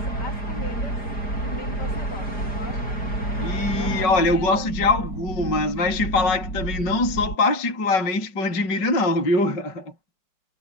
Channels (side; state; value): right; late; 5.4 ms